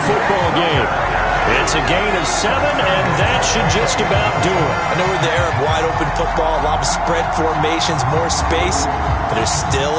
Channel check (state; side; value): identical; both; correlation 1.00